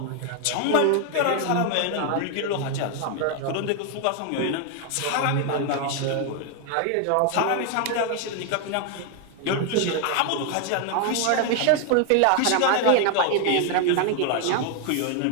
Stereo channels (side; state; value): both; different; correlation 0.01